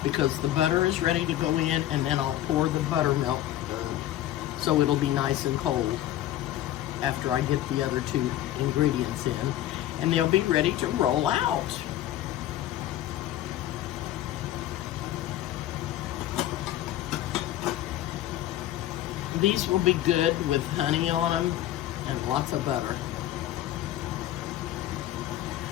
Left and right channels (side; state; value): right; quieter; 13.4 dB